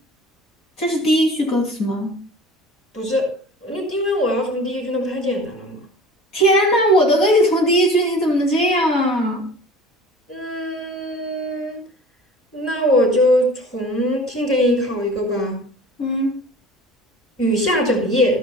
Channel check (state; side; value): normal; both; correlation 0.42